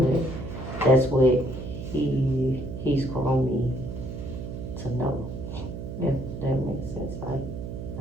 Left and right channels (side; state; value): right; noise; hum, 7 dB below the sound